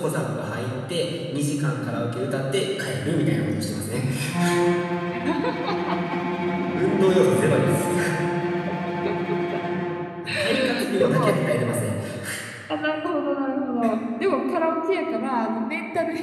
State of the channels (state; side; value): identical; both; correlation 1.00